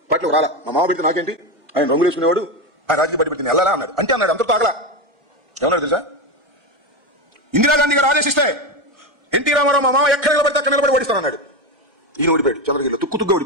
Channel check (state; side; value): late; left; 1.4 ms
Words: పార్టీలో రాలా. మా మామ పెడితే నాకేంటి, ఆయన రంగు వేసుకునేవాడు, ఆయన రాజకీయ పార్టీ పెడితే వెళ్ళాలా అన్నాడు. అంటే అన్నాడు, అంతకు తాగలా. ఏమన్నాడు తెలుసా? ఇందిరాగాంధీ గారు ఆదేశిస్తే ఎన్టీ రామారావు మా మామ ఎక్కడ నిలబడితే అక్కడ నిలబడి ఓడిస్తానన్నాడు. ఈయన ఓడిపోయాడు. చంద్రగిరిలో తుక్కుతుగ్గా